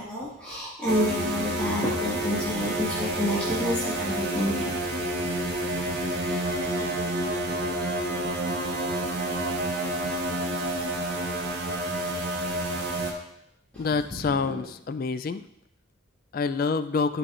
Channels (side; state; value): both; normal; correlation 0.36